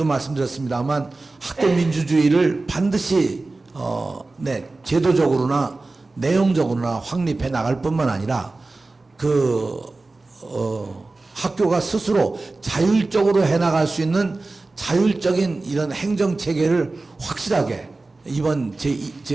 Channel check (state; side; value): quieter; left; 3.3 dB